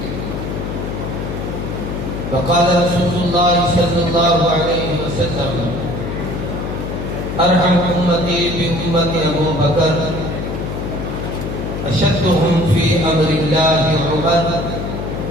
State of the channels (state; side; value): noise; left; hum, 5 dB below the sound